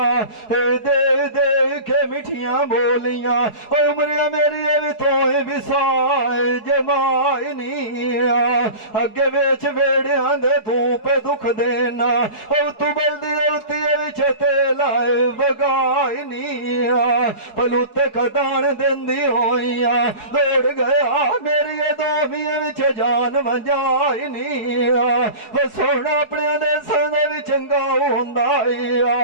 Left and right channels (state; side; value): late; right; 4.7 ms